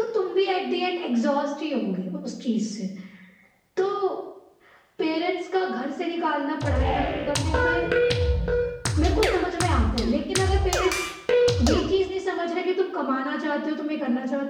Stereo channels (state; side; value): identical; both; correlation 1.00